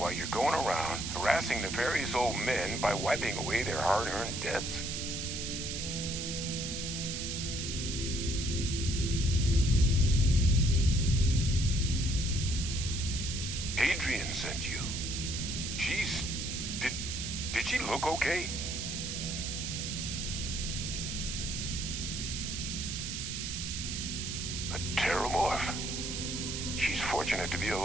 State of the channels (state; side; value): noise; right; hiss, 4 dB below the sound